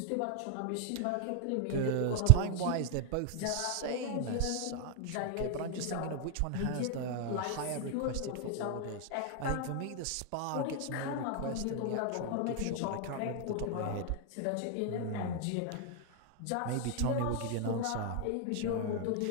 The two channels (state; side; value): different; both; correlation 0.00